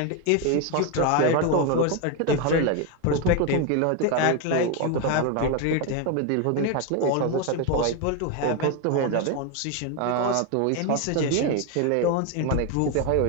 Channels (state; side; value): different; both; correlation 0.02